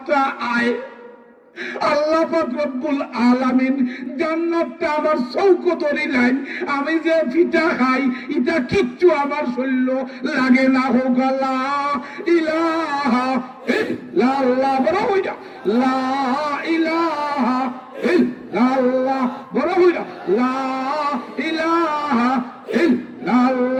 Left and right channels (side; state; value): both; identical; correlation 1.00